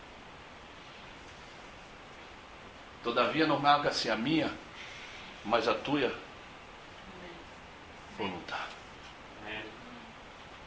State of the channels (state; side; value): identical; both; correlation 1.00